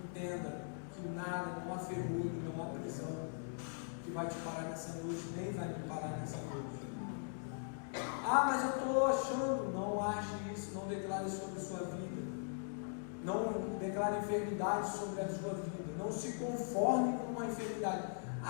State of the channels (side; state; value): right; silent; digital silence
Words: que nada, não há ferrolho, não há prisão que vai te parar nessa noite, nem vai me parar nessa noite. Ah, mas eu estou achando. Não ache isso, não declare sobre a sua vida, não declare enfermidade sobre a sua vida, não se conforme com uma enfermidade.